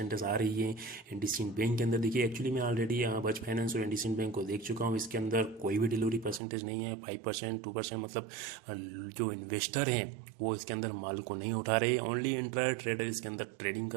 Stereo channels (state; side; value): drops out; left; at 6.4 s